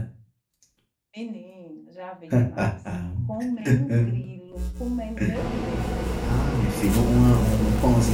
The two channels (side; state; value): both; identical; correlation 1.00